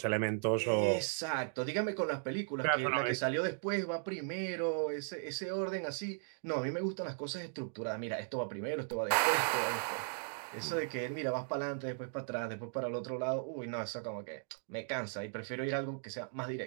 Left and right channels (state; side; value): silent; left; digital silence